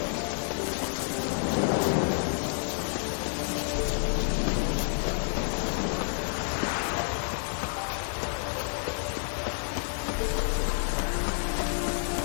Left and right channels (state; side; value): silent; right; 58 dB below the other